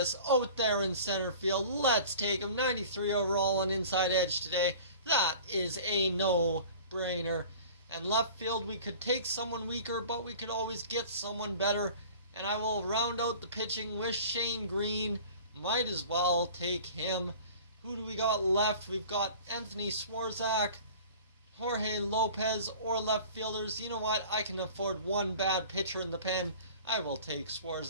out there in center field? Let's take him. 93 overall on inside edge today. That is a no-brainer. And left field, we could take someone weaker, but we could always get someone better. And I will round out the pitching with Shane Green. Might as well take him. Who do we got left? We've got Anthony Swarzak, Jorge Lopez, or left fielders. You know what? I can afford one bad pitcher in the pen. I will take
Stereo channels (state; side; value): inverted; both; correlation -0.43